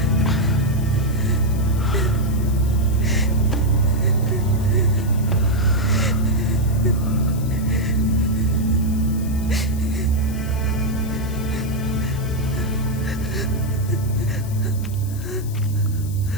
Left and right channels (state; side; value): noise; left; hiss, 17 dB below the sound